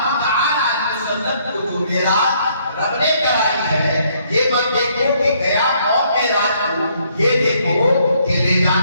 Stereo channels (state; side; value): inverted; both; correlation -0.67